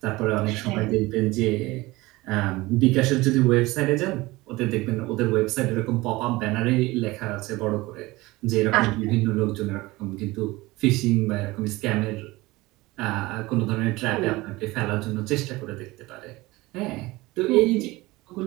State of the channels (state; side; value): quieter; left; 20.6 dB